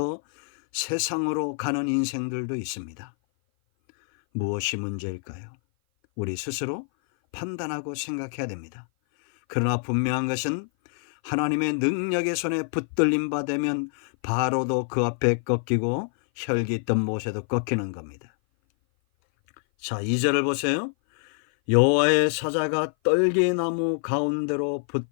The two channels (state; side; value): silent; right; 57 dB below the other